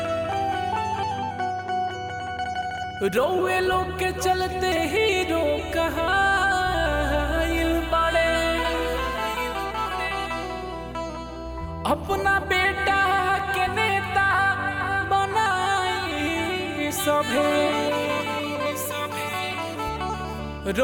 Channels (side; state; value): both; identical; correlation 1.00